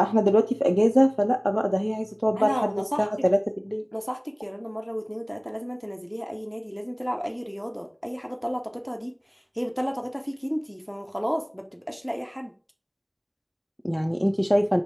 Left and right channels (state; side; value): identical; both; correlation 1.00